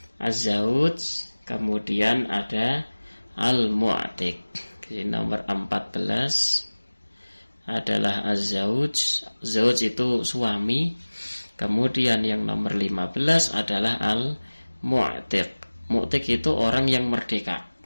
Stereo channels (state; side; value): inverted; both; correlation -1.00